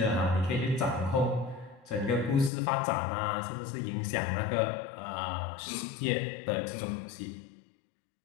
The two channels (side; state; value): right; drops out; at 2.5 s